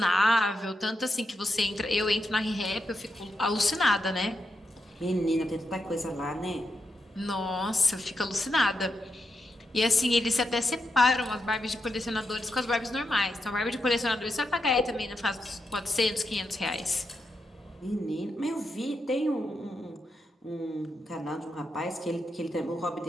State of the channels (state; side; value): normal; both; correlation 0.84